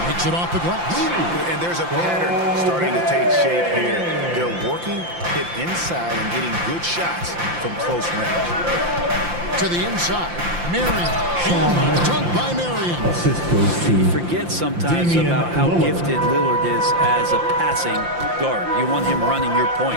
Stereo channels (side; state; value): left; late; 5.8 ms